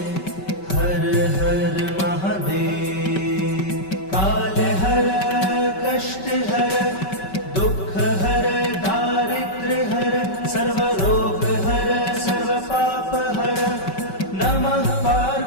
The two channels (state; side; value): late; right; 5.3 ms